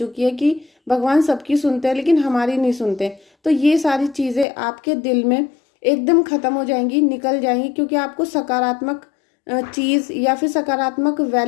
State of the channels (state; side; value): drops out; right; at 4.5 s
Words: है कि भगवान सबकी सुनते हैं लेकिन हमारी नहीं सुनते, तो ये सारी चीजें आपके दिल में एकदम खत्म हो जाएंगी, निकल जाएंगी, क्योंकि आपको सकारात्मक चीज या फिर सकारात्मक